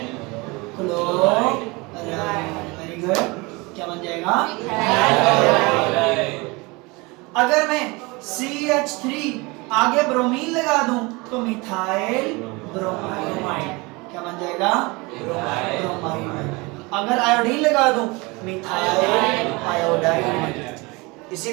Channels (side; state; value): left; quieter; 25.5 dB